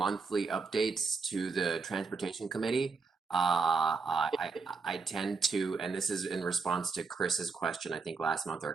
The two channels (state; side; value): quieter; left; 4.6 dB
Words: updates to the Transportation Committee. I tend to, and this is in response to Chris's question, I think last month or